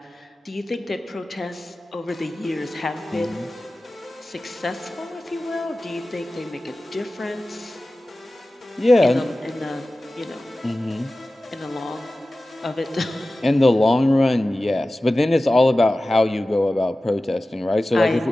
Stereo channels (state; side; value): normal; both; correlation 0.96